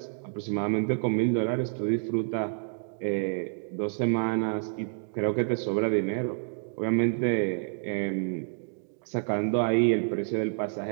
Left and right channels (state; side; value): silent; left; digital silence